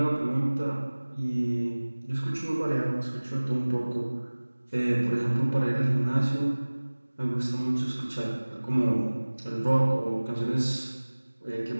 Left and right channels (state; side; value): inverted; both; correlation -1.00